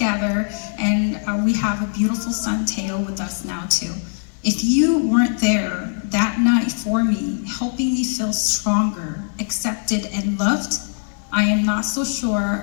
and we have a beautiful son, Teo, with us now too. If you weren't there that night for me, helping me feel stronger, accepted, and loved, I am not so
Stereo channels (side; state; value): right; silent; 57 dB below the other